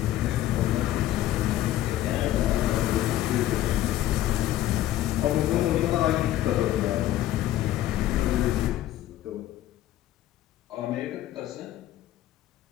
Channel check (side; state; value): right; quieter; 13.8 dB